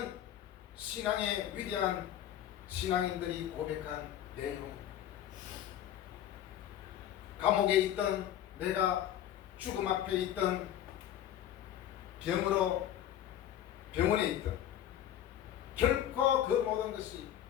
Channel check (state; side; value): quieter; right; 11.2 dB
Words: 신앙의 위대한 신앙인들이 고백한 내용입니다. 감옥에 있던 내가 죽음 앞에 있던 병원에 있던 결코 그 모든 것이